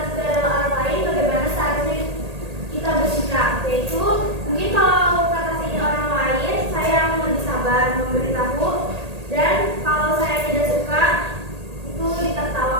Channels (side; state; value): left; late; 1.8 ms